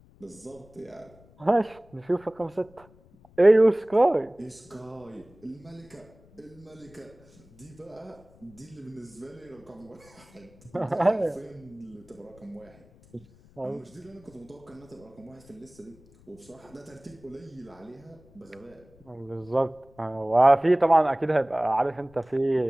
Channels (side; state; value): left; noise; rumble, 26 dB below the sound